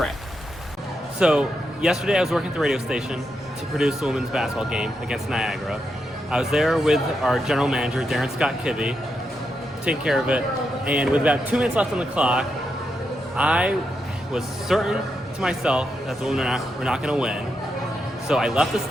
So yesterday I was working at the radio station to produce the women's basketball game against Niagara. I was there with our general manager, Darren Scott Kibbe, taking care of it. And with about 2 minutes left on the clock, I was certain to myself that the women were not going to win. So I left the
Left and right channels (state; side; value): normal; both; correlation 0.84